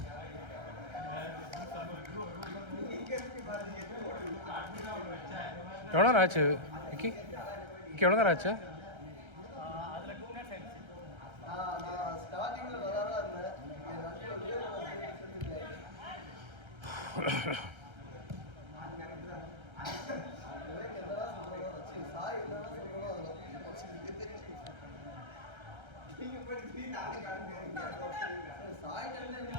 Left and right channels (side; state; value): left; late; 1.3 ms